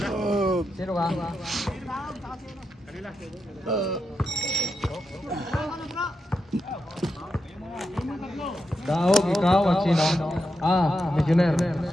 Sino ka? Daog, ikaw at sino? Missioner.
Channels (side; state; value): both; normal; correlation 0.86